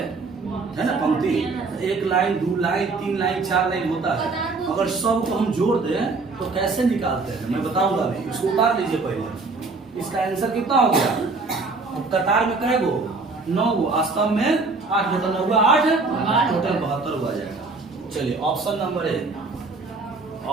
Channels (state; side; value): quieter; left; 3.8 dB